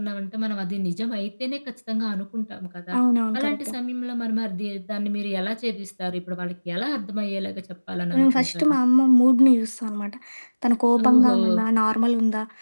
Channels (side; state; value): both; inverted; correlation -1.00